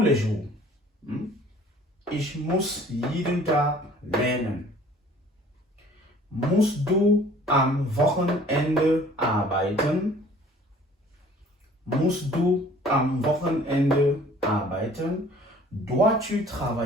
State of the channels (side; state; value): both; normal; correlation 0.52